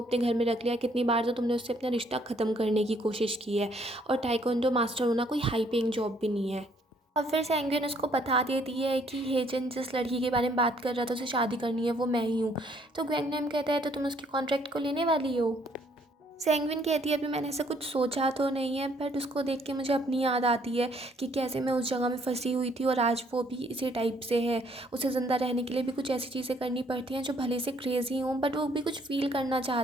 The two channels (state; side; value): normal; both; correlation 0.65